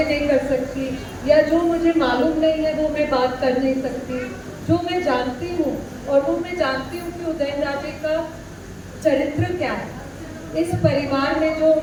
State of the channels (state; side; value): identical; both; correlation 1.00